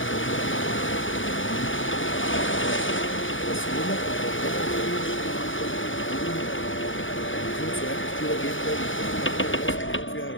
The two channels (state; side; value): late; right; 0.57 ms